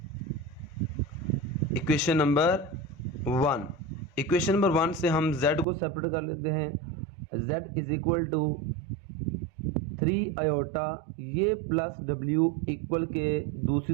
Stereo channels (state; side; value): drops out; left; at 5.7 s